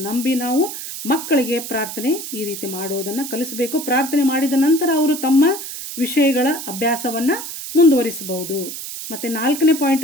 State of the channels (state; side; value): noise; right; hiss, 8 dB below the sound